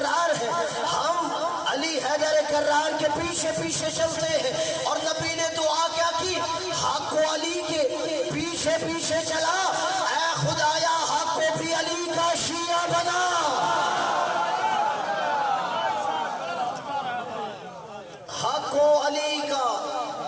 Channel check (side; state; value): both; identical; correlation 1.00